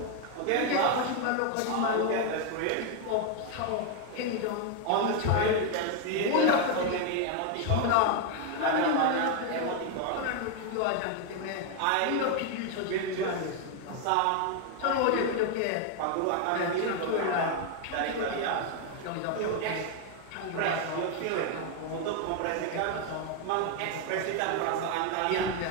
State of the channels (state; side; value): different; both; correlation 0.01